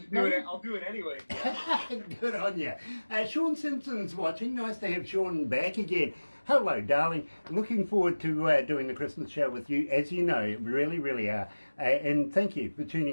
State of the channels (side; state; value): both; inverted; correlation -1.00